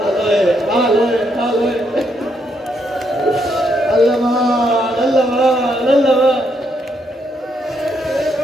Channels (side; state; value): both; normal; correlation 0.76